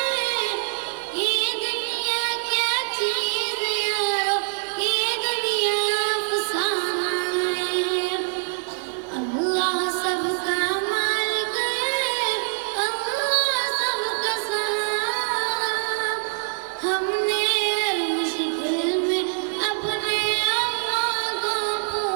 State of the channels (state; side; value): silent; left; 62 dB below the other